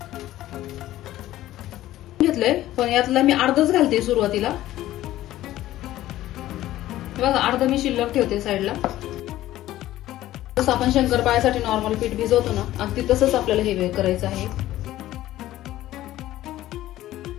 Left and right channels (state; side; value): quieter; right; 14.6 dB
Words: घेतलंय पण यातला मी अर्धच घालते सुरुवातीला। बघा अर्ध मी शिल्लक ठेवते साईडला। जसं आपण शंकरपाळ्यासाठी नॉर्मल पीठ भिजवतो ना अगदी तसंच आपल्याला हे करायचं आहे।